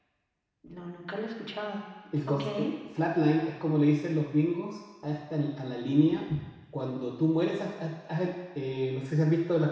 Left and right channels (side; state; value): both; identical; correlation 1.00